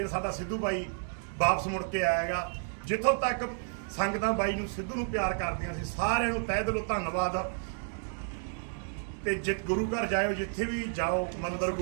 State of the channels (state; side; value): silent; left; 55 dB below the other